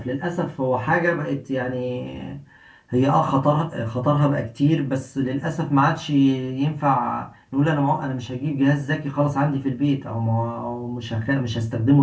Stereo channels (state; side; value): identical; both; correlation 1.00